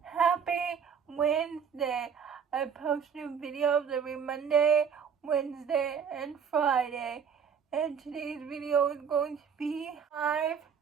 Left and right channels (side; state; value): left; quieter; 7.0 dB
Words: Happy Wednesday! I post new videos every Monday, Wednesday, and Friday. And today's video is going to be 5